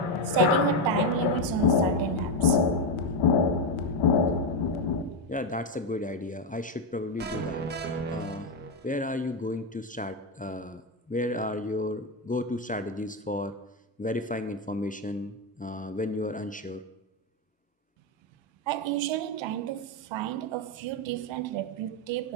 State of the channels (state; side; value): normal; both; correlation 0.08